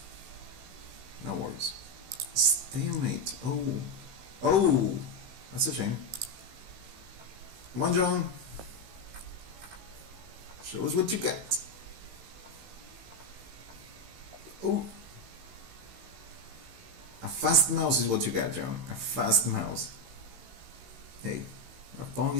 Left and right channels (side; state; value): left; late; 16 ms